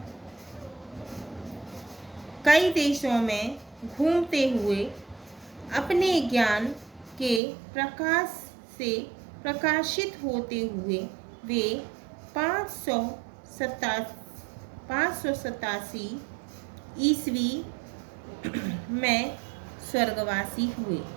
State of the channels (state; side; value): drops out; left; at 7.4 s